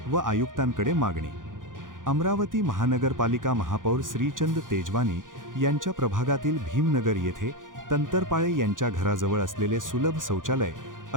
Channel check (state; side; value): late; left; 0.89 ms